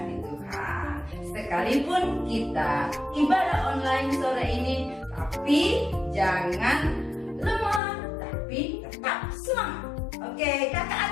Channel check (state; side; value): drops out; right; at 7.8 s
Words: Tuhan. Sekalipun kita ibadah online sore ini, tapi jangan lemah, tapi tetap semangat. Oke, kakak